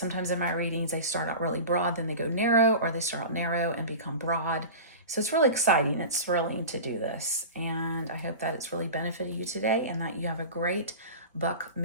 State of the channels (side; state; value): both; inverted; correlation -0.32